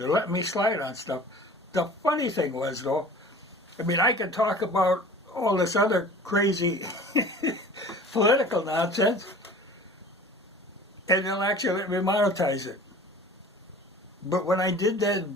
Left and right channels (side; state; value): both; normal; correlation 0.43